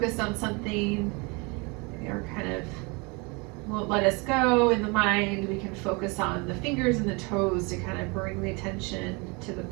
on something, or kind of won't let us go in the mind, we can focus on the fingers and the toes to kind of bring the attention to the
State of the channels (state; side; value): quieter; left; 29.3 dB